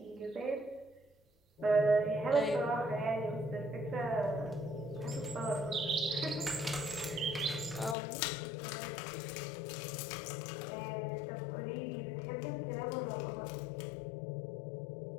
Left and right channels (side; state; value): right; drops out; at 8.0 s